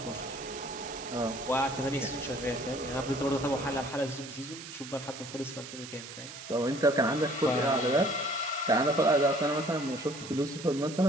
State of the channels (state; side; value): noise; right; hiss, 12 dB below the sound